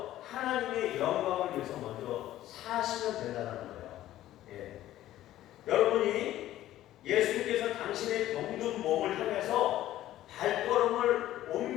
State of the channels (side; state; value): right; quieter; 13.8 dB